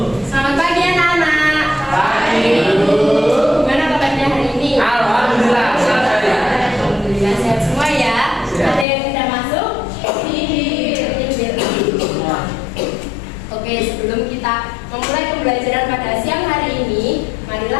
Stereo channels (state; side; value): drops out; right; at 8.8 s